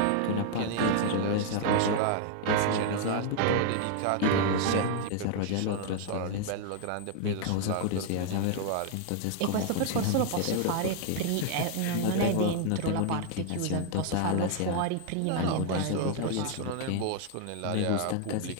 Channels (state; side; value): different; both; correlation 0.00